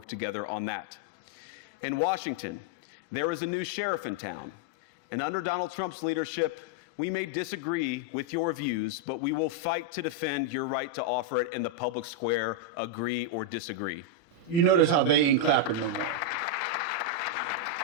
together on that. In Washington, there is a new sheriff in town, and under Donald Trump's leadership, we may disagree with your views, but we will fight to defend your right to offer it in the public square, agree or disagree. You notice how they ain't clapping no more.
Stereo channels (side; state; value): right; late; 35 ms